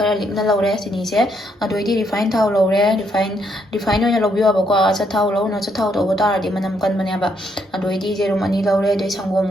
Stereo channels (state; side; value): normal; both; correlation 0.74